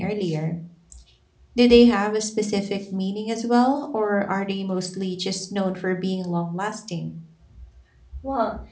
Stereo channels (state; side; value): identical; both; correlation 1.00